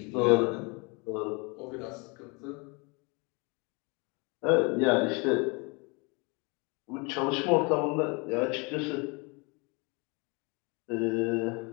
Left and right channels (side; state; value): right; quieter; 30.1 dB